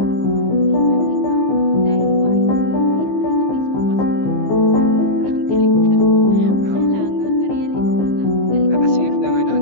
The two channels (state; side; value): late; right; 15 ms